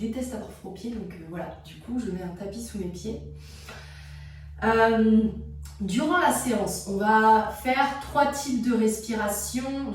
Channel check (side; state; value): both; identical; correlation 1.00